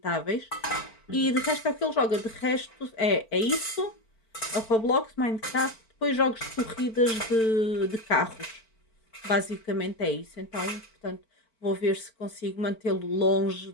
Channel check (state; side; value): late; right; 4.5 ms